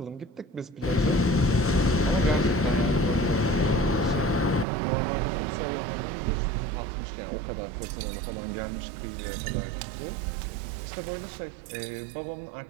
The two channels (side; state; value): left; drops out; at 4.7 s